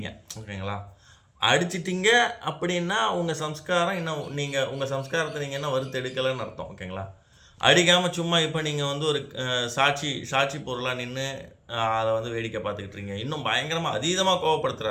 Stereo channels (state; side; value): identical; both; correlation 1.00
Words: ஓகேங்களா? அடிச்சிட்டிங்க அப்படின்னா உங்கள் சம்ஸ்காரம் இன்னும் உங்கள் சம்ஸ்காரத்தை நீங்கள் என்ன வறுத்து எடுக்கலைன்னு அர்த்தம், ஓகேங்களா? அடிக்காமல் சும்மா இப்போ நீங்கள் ஒரு சாட்சி பொருளாக நின்று அதை வேடிக்கை பார்த்துக்கிட்டுருங்க. இன்னும் பயங்கரமாக அதீதமாக